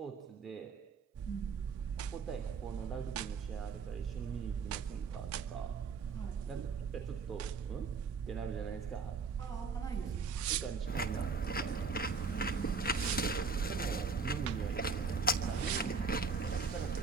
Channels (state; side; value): quieter; left; 4.8 dB